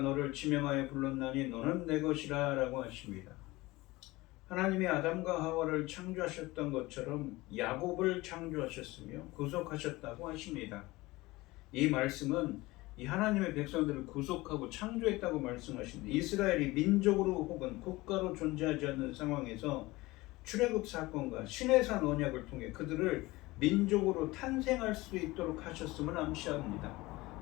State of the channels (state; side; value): quieter; right; 20.5 dB